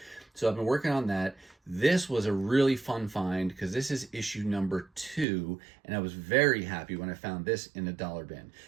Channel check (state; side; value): drops out; left; at 5.2 s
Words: So I've been working on that. This was a really fun find because this is issue #2, and I was very happy when I found this in a dollar bin.